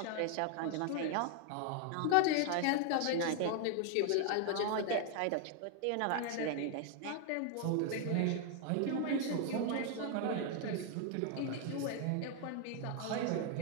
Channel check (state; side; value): different; both; correlation 0.00